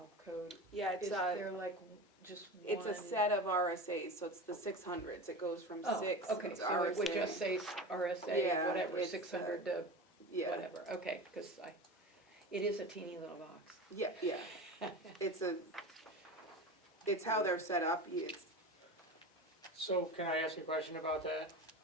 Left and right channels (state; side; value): normal; both; correlation 0.29